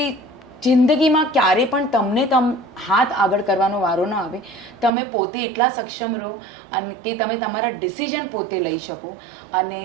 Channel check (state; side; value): drops out; left; at 4.9 s